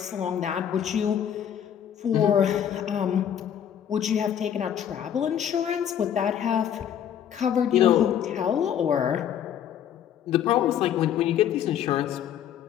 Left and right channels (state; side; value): quieter; right; 9.5 dB